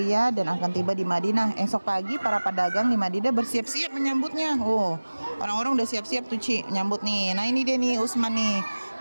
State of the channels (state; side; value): inverted; both; correlation -1.00